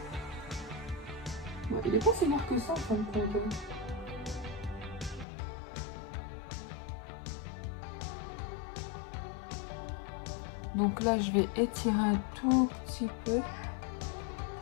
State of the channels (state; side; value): drops out; right; at 5.2 s